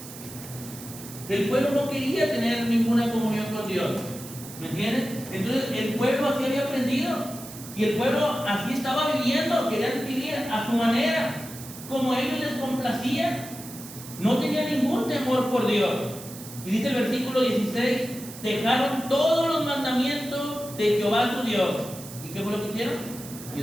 El pueblo no quería tener ninguna comunión con Dios. ¿Me entiendes? Entonces el pueblo así había aprendido. Y el pueblo así estaba viviendo. Querían vivir a su manera, como a ellos les complacía. No tenía ningún temor por Dios. Y dice el versículo 16, dejaron todos los mandamientos de Jehová su Dios. ¿Y qué fue lo que hicieron?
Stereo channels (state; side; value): noise; right; hiss, 14 dB below the sound